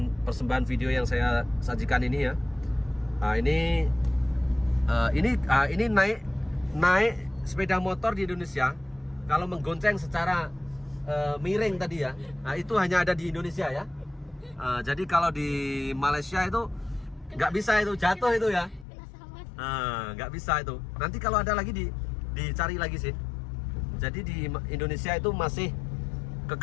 persembahan video yang saya sajikan ini ya. Ini naik sepeda motor di Indonesia kalau menggonceng secara miring tadi ya. Nah, itu hanya ada di Indonesia ya. Jadi kalau di Malaysia itu nggak bisa, itu jatuh itu ya. Nggak bisa itu. Nanti kalau ada lagi dicari lagi sih. Jadi di Indonesia itu masih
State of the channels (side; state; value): right; drops out; at 18.9 s